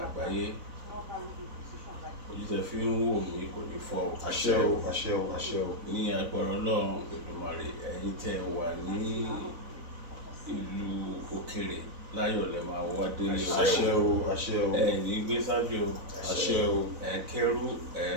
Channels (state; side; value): late; left; 4.0 ms